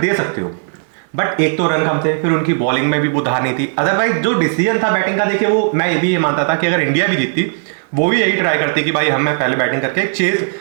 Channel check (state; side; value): silent; left; 57 dB below the other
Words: सकते हो, बट एक तो रन कम थे, फिर उनकी बॉलिंग में भी वो धार नहीं थी। अदरवाइज जो डिसीजन था बैटिंग का, देखिए वो मैं ये मानता था कि अगर इंडिया भी जीतती वो भी यही ट्राई करती कि भाई हमें पहले बैटिंग करके चेस